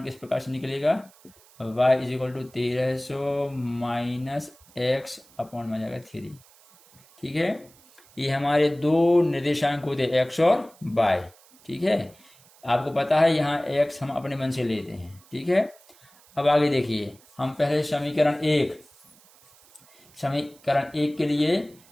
किस प्रकार से निकलेगा, y = 1300 - x / जाएगा 3, ठीक है। ये हमारे 2 निर्देशांक होते हैं, x और y, ठीक है। आपको पता है यहाँ x हम अपने मन से लेते हैं, ठीक है। अब आगे देखिए, हम पहले समीकरण 1 के लिए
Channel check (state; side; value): noise; right; hiss, 27 dB below the sound